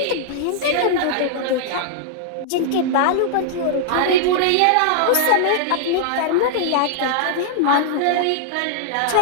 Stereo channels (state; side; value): different; both; correlation -0.01